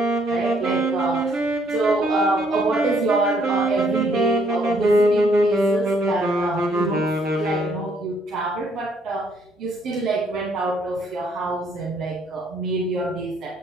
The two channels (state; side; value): normal; both; correlation 0.67